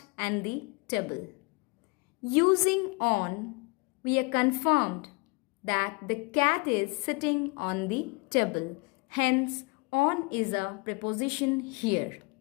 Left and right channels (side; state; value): right; quieter; 29.1 dB